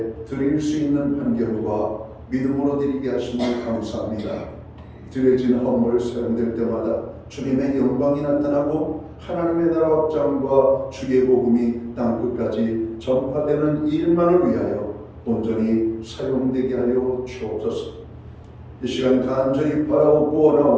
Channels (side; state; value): both; identical; correlation 1.00